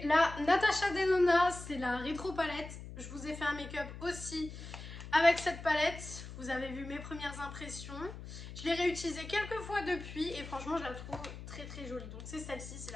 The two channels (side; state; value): left; noise; hum, 11 dB below the sound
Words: la Natasha Denona, c'est la rétro palette. Je vous ai fait un make-up aussi avec cette palette. Vous avez vu mes premières impressions. Je l'ai réutilisée quelques fois depuis et franchement je la trouve très très jolie. Donc c'est celle-ci, c'est